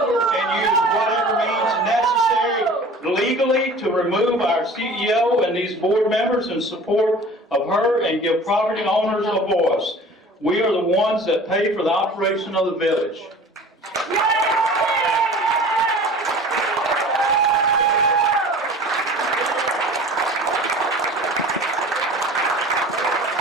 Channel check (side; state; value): both; normal; correlation 0.43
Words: and use whatever means necessary legally to remove our CEO and these board members in support of her and give property owners a voice. We are the ones that pay for the operation of the village.